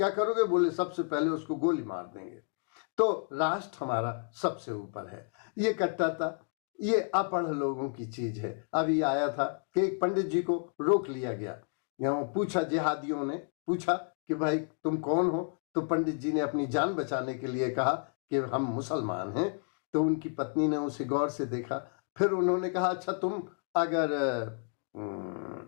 करोगे, बोले सबसे पहले उसको गोली मार देंगे। तो राष्ट्र हमारा सबसे ऊपर है। ये कट्टरता ये अपढ़ लोगों की चीज है। अभी आया था कि एक पंडित जी को रोक लिया गया, पूछा, जिहादियों ने पूछा कि भाई तुम कौन हो, तो पंडित जी ने अपनी जान बचाने के लिए कहा कि हम मुसलमान हैं। तो उनकी पत्नी ने उसे गौर से देखा, फिर उन्होंने कहा अच्छा तुम अगर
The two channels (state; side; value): silent; right; 56 dB below the other